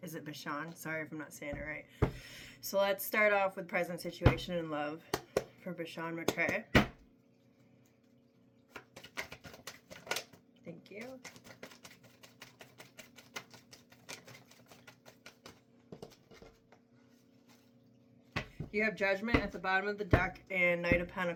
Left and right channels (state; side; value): identical; both; correlation 1.00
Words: is it Bashan? Sorry if I'm not saying it right. So let's start off with present situation in love for Bashan McCray. Thank you. You have Judgment at the bottom of the deck, and Knight of